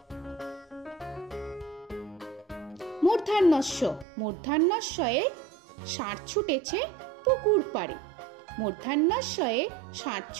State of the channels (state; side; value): drops out; left; at 4.0 s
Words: মূর্ধন্যস্য মূর্ধন্যস্বয়ে ষাঁড় ছুটেছে পুকুর পাড়ে। মূর্ধন্যস্বয়ে ষাঁড়